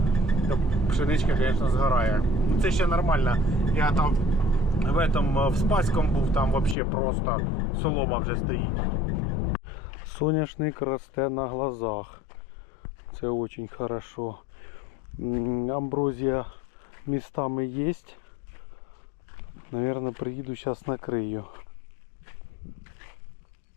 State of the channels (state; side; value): drops out; right; at 6.8 s